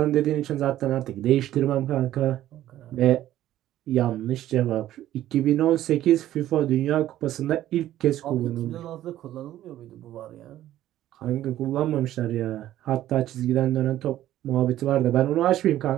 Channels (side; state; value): left; quieter; 13.2 dB